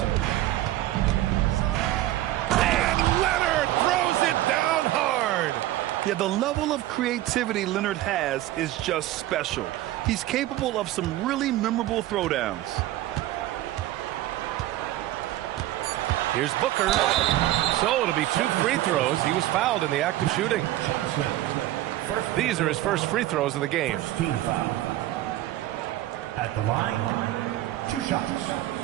And Leonard throws it down hard. Yeah, the level of creativity Leonard has is just special. He's capable of some really memorable throwdowns. Here's Booker. So it'll be 2 free throws. He was fouled in the act of shooting. These are his first free throws of the game. Team foul. At the line, 2 shots.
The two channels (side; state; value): left; quieter; 15.0 dB